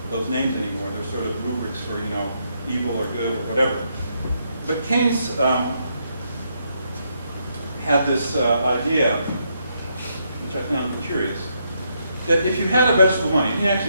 those names anymore. They're sort of rubrics for, evil or good or whatever. But Keynes had this idea, which I found curious, that if you had a vegetable money, and he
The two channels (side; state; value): both; inverted; correlation -0.77